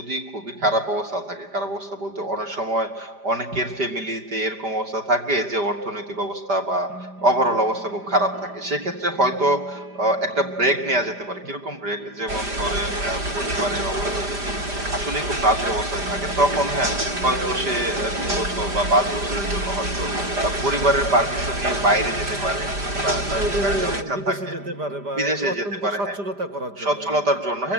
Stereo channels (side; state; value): left; late; 5.0 ms